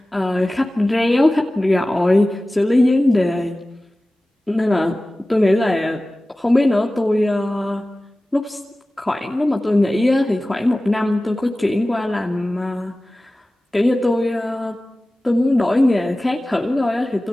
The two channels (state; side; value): normal; both; correlation 0.97